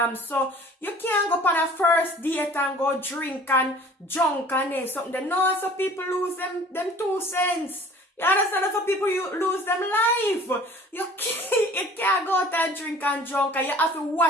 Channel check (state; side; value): normal; both; correlation 0.48